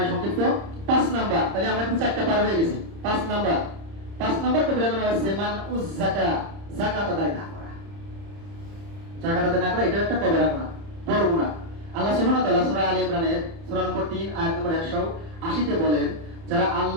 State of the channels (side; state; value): left; late; 30 ms